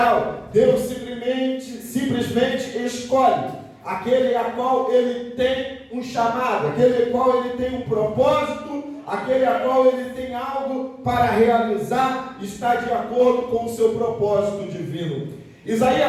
Deus simplesmente escolhe aquele a qual ele tem um chamado, aquele a qual ele tem um propósito, aquele a qual ele tem algo para realizar, está de acordo com o seu propósito divino.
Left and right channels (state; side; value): identical; both; correlation 1.00